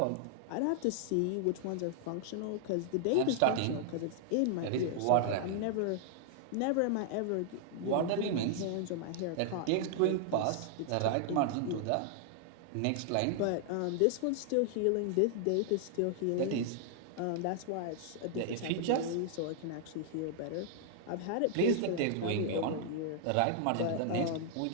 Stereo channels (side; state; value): both; different; correlation -0.01